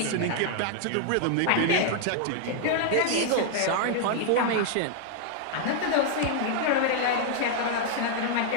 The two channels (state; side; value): different; both; correlation 0.00